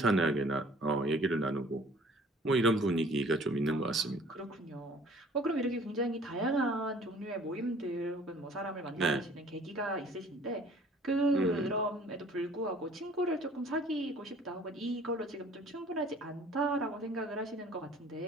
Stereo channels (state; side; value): normal; both; correlation 0.52